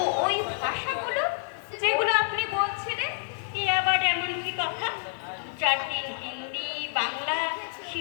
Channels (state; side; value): silent; right; digital silence